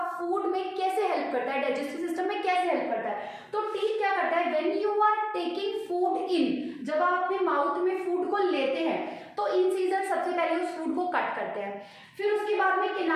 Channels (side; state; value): both; identical; correlation 1.00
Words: फूड में कैसे हेल्प करता है, डाइजेस्टिव सिस्टम में कैसे हेल्प करता है। तो टीथ क्या करता है, when you are taking food in, जब आप अपने माउथ में फूड को लेते हैं तो इंसीजर सबसे पहले उस फूड को कट करते हैं। फिर उसके बाद में